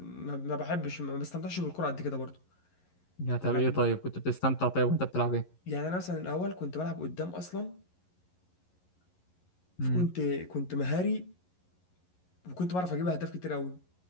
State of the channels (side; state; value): right; late; 11 ms